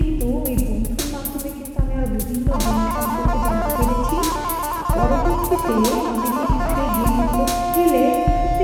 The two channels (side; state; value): both; identical; correlation 1.00